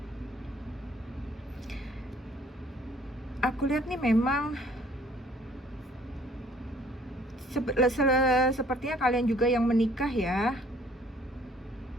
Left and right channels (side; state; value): both; normal; correlation 0.58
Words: aku lihat nih memang sepertinya kalian juga yang menikah ya.